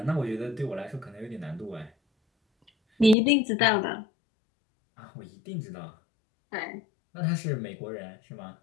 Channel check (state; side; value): drops out; right; at 3.2 s